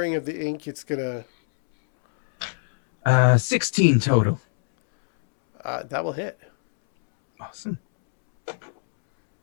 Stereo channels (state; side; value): silent; right; 63 dB below the other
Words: of the ink, it's gonna 16 total. that will hit. Awesome.